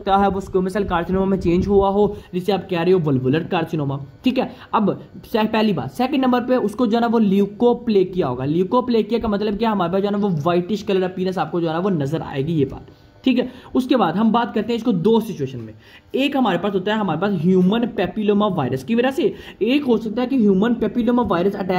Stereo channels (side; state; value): both; identical; correlation 1.00